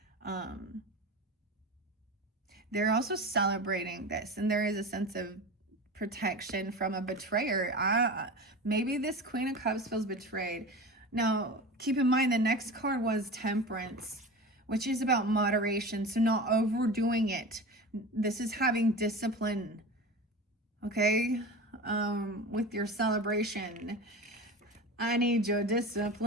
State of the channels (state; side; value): normal; both; correlation 0.31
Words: They're also celebrating this, and there is a sense of protection from a betrayer. Maybe this Queen of Cups feels betrayed. Now, keep in mind the next card was Temperance, which is about moderation, so not overdoing it. This is having discipline, okay? With your celebration. I need your